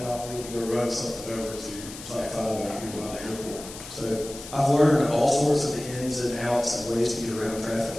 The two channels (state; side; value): noise; left; hiss, 13 dB below the sound